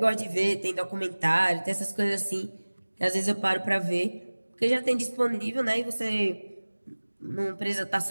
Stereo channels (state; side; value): inverted; both; correlation -1.00